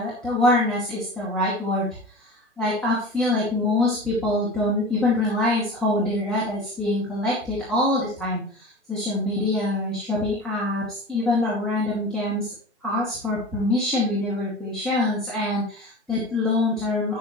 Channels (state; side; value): normal; both; correlation 0.34